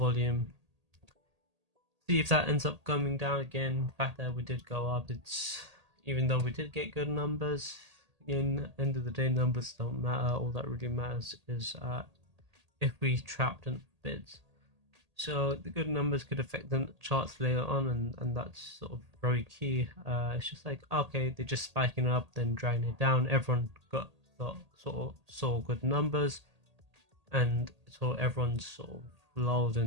See if that ends up coming down again. The fact that we did go up, it's, even though we did get good numbers, in end of the day, numbers don't matter. All that really matters is if we trapped in bids. So the good numbers could affect the charts later on, and that's sort of very key. It's just like, okay, they're just spiking up, then dragging it down. Everyone got sort of saw good numbers, and so everyone's sort of lulled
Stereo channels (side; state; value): left; late; 1.8 ms